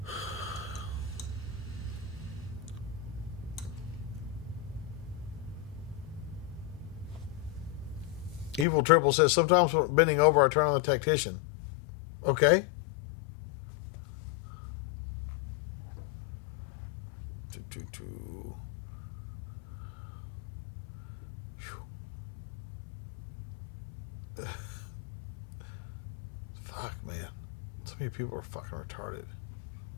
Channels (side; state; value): right; drops out; at 8.7 s